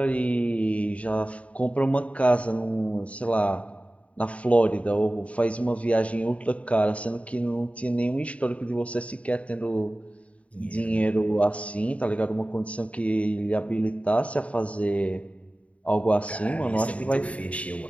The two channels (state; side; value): late; right; 0.065 ms